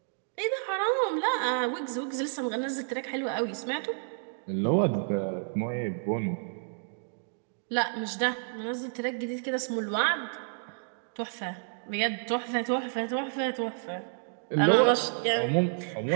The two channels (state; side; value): silent; left; digital silence